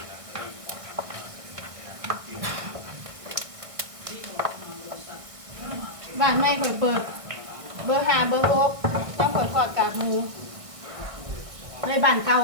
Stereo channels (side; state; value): left; late; 1.6 ms